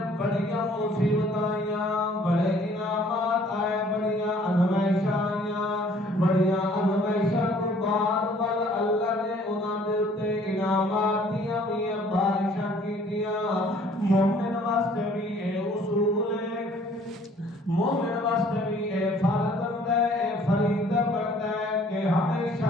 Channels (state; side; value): normal; both; correlation 0.57